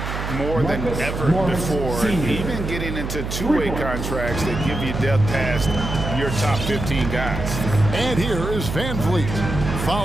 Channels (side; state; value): right; noise; hum, 5 dB below the sound